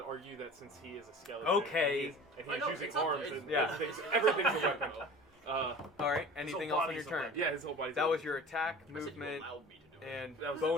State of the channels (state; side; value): normal; both; correlation 0.39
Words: argue that since he is a skeleton, Okay. and I he's know, using it's not- arms, it's- and Yeah. everything's a weapon. All right. Anything else on your body's a turn? weapon. Yeah, his whole body's. That a was weapon. your attack, I said you movement, allowed me to do it. and That was-